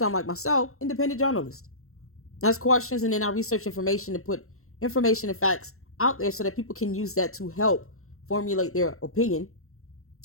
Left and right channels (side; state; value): right; late; 0.63 ms